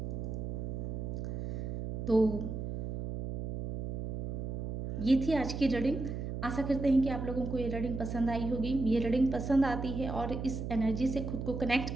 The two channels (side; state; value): right; noise; hum, 4 dB below the sound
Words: तो ये थी आज की रीडिंग। आशा करते हैं कि आप लोगों को ये रीडिंग पसंद आई होगी। ये रीडिंग पसंद आती है और इस एनर्जी से खुद को कनेक्ट